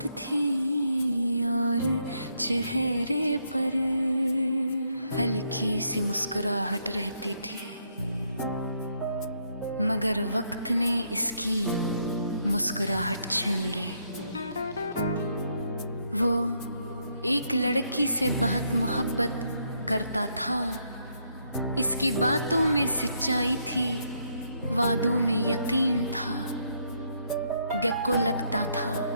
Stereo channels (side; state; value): both; inverted; correlation -0.74